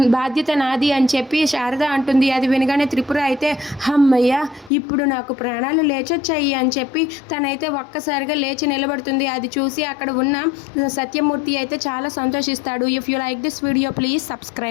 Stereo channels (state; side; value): drops out; right; at 4.7 s